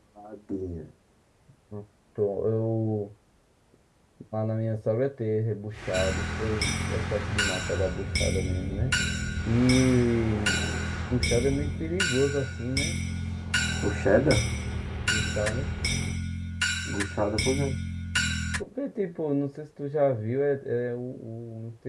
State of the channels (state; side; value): identical; both; correlation 1.00